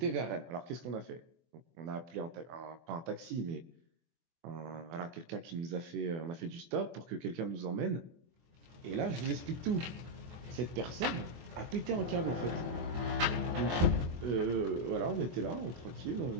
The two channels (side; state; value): left; late; 23 ms